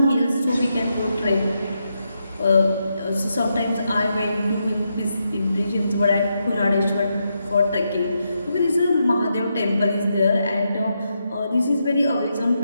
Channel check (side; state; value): both; inverted; correlation -0.83